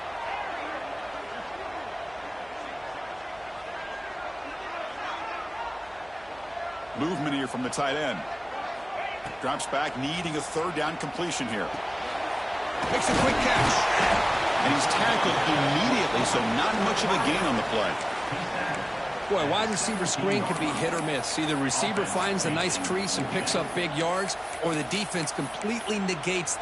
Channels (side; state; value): right; noise; hum, 26 dB below the sound